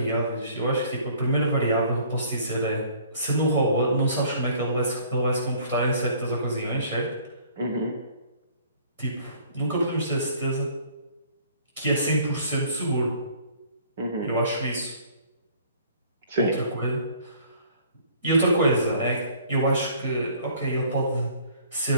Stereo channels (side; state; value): both; inverted; correlation -0.55